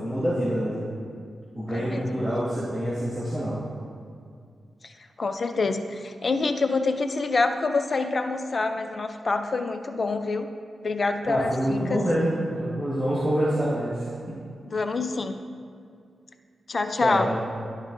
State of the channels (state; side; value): normal; both; correlation 0.91